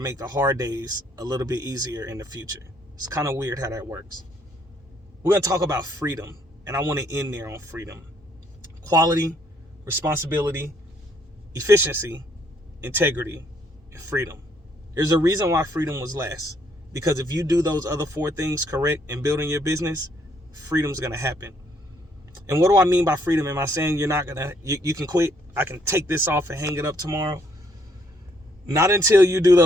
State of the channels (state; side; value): normal; both; correlation 0.69